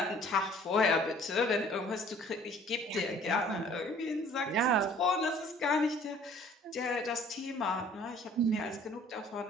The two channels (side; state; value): both; normal; correlation 0.54